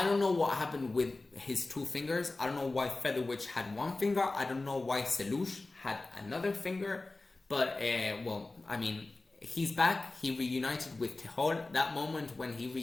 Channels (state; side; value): quieter; right; 3.2 dB